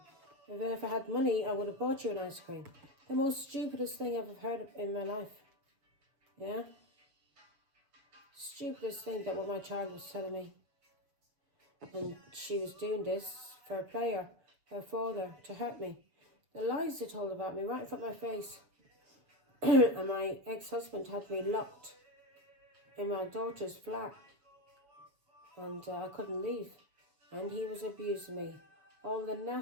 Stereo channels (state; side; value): late; left; 6.8 ms